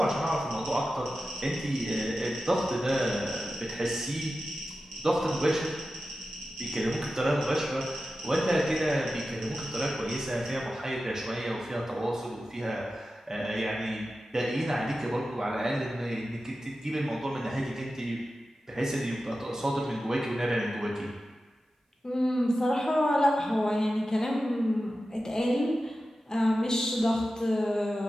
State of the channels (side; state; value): both; normal; correlation 0.93